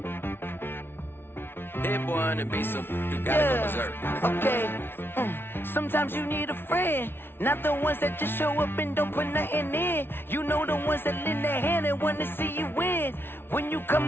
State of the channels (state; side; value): late; right; 0.11 ms